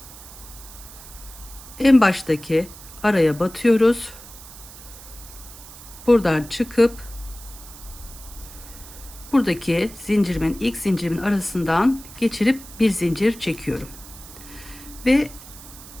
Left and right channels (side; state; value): right; noise; hiss, 17 dB below the sound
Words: En baştaki araya batıyoruz. Buradan çıkıp buradaki zincirimin ilk zincirimin arasından geçirip bir zincir çekiyorum. Ve